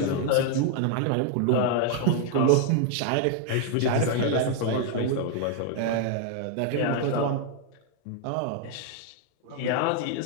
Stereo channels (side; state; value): both; different; correlation 0.00